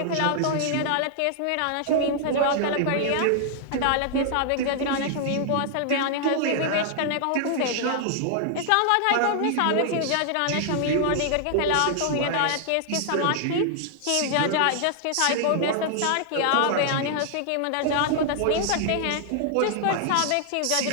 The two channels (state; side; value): different; both; correlation 0.00